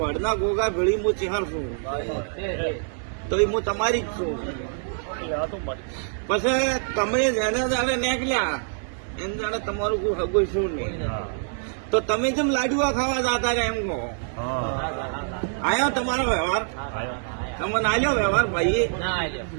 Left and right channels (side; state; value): left; silent; 62 dB below the other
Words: ગોગા ભેળી હું ચેહર છું, તો એ હું તમારી જ છું. પછી તમે જેને જાણે નીકળ્યા એને જાણે તમારું કોઈ હગું શું નહીં, તો તમે જેમ લાડુઆ ખાવા જતા રહ્યા એમ કહો. આયો તમારો વ્યવહાર? તમને આલ્યો વ્યવહાર ભાઈ?